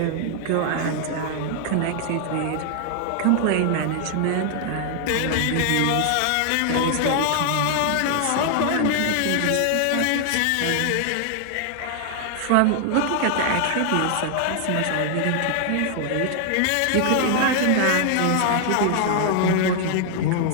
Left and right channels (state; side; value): different; both; correlation 0.00